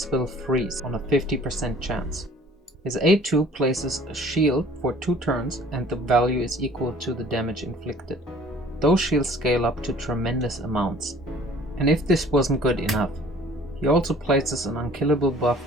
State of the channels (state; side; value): normal; both; correlation 0.51